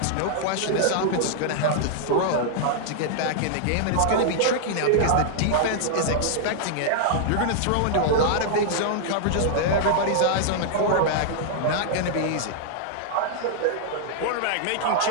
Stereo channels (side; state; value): both; different; correlation -0.01